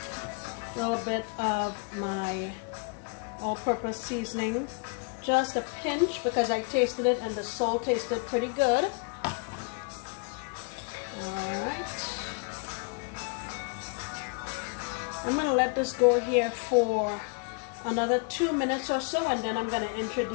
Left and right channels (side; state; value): right; quieter; 34.8 dB